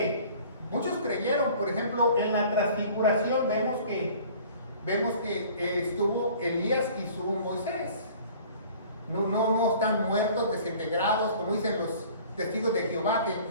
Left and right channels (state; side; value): inverted; both; correlation -0.49